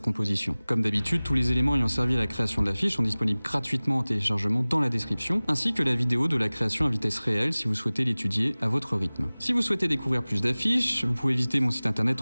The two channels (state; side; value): inverted; both; correlation -0.99